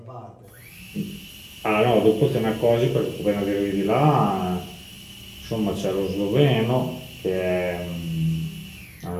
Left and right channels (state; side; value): identical; both; correlation 1.00